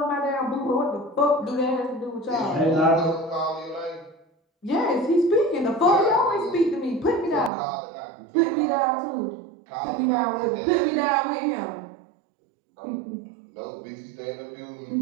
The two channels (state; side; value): drops out; left; at 7.5 s